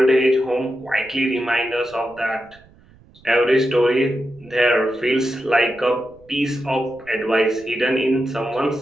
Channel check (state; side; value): noise; right; rumble, 27 dB below the sound